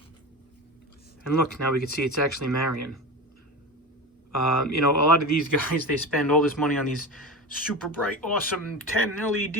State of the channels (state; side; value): normal; both; correlation 0.27